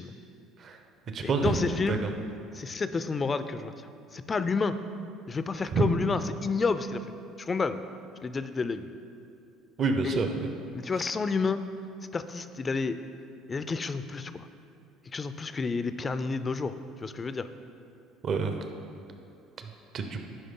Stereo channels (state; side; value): normal; both; correlation 0.76